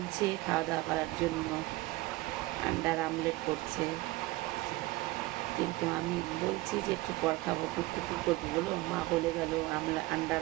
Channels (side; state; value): left; quieter; 19.7 dB